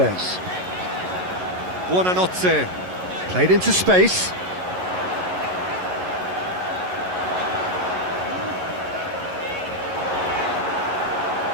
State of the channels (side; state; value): left; late; 11 ms